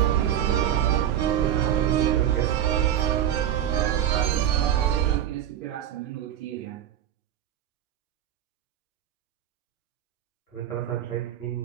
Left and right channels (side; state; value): left; quieter; 10.8 dB